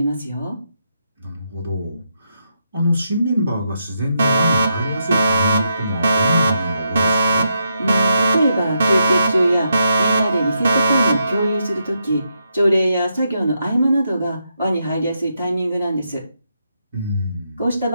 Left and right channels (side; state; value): both; inverted; correlation -0.82